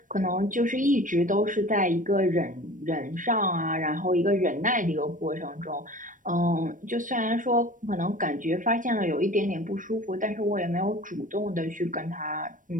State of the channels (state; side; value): late; left; 0.38 ms